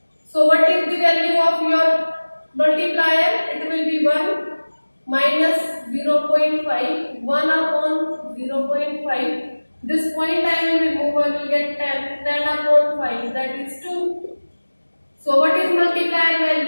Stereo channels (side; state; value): both; inverted; correlation -1.00